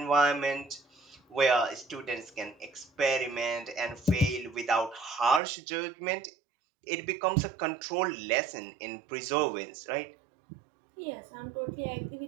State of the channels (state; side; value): drops out; left; at 5.4 s